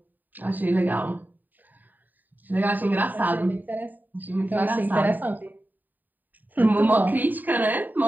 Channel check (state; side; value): late; left; 0.088 ms